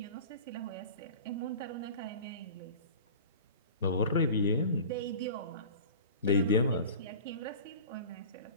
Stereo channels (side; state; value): both; inverted; correlation -0.38